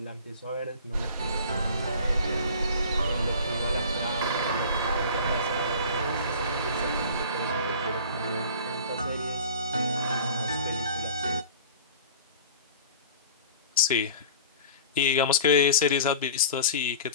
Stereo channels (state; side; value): inverted; both; correlation -0.40